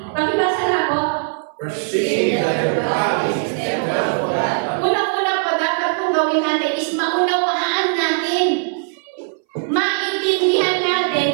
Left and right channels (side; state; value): left; silent; 63 dB below the other